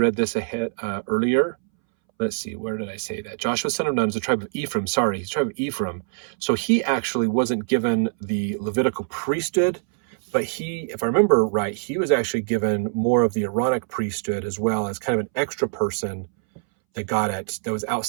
this earlier. Let's see, where did I say that? Joshua, son of Nun, is the tribe of Ephraim. Sorry, he's the tribe of Ephraim. So he actually wasn't given the Levitical priesthood, but if I remember right, he was actually given more of the Aaronic priesthood as well, as kind of an extra person that was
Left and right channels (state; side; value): silent; left; 62 dB below the other